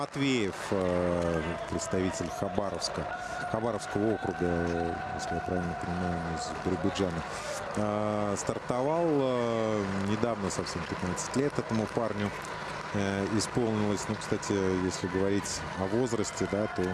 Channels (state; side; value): identical; both; correlation 1.00